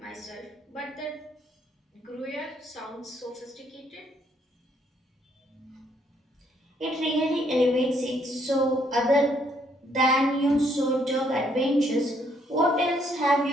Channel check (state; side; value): normal; both; correlation 0.70